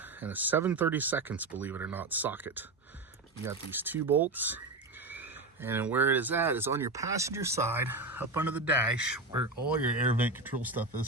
and a 7/32, believe it or not, socket. You got these 2 bolts. And where it is at is on your passenger side, up under the dash, where all your air vent control stuff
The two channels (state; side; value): quieter; left; 3.3 dB